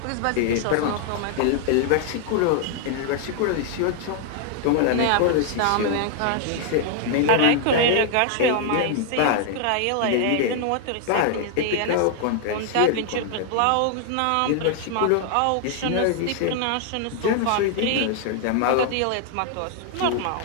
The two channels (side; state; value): both; different; correlation 0.00